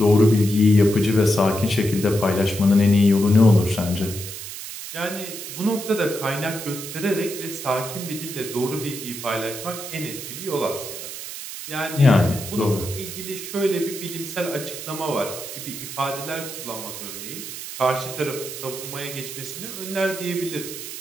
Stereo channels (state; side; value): noise; right; hiss, 9 dB below the sound